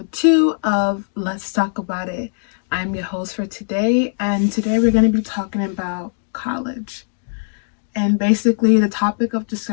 2 of Let's Talk About It. I'm your host for today, and today we're going to be talking about college. And basically the topic of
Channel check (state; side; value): silent; right; digital silence